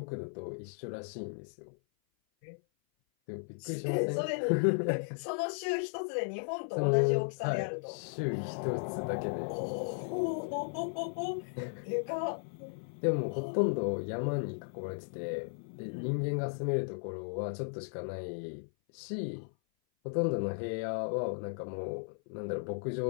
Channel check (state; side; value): silent; right; 54 dB below the other